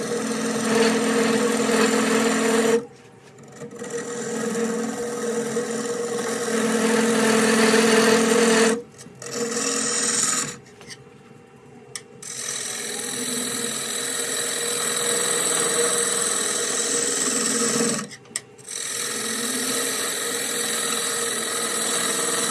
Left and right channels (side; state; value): both; identical; correlation 1.00